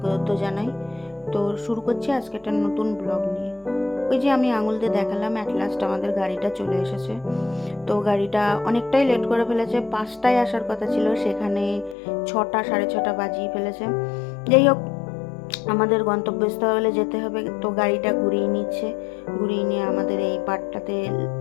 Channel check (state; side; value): drops out; right; at 12.0 s